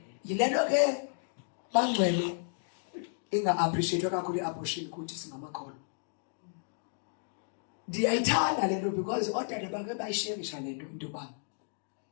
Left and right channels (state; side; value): silent; right; digital silence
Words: Yile nto ke bangcwele inga-appreciate kakhulu i-abortion kuthi singamakholwa. Ndiyayithanda le nto because oodade bake bayisherisha le nto into yoba